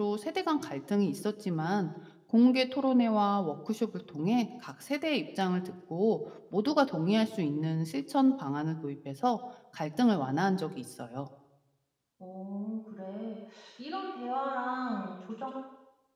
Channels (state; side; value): identical; both; correlation 1.00